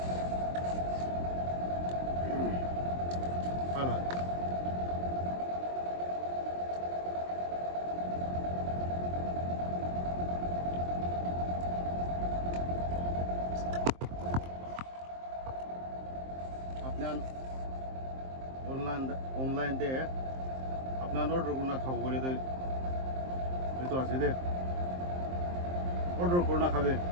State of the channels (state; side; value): late; left; 23 ms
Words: Voilà. আপনার অনলাইন দে আপনার অর্ডার করনা খাবো বলে তো আছে দে অর্ডার করনা খাবে